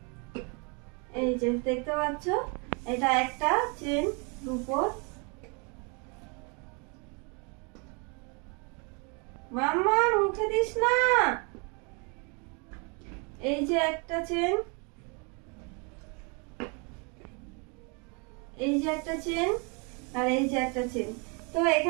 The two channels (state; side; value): quieter; left; 33.6 dB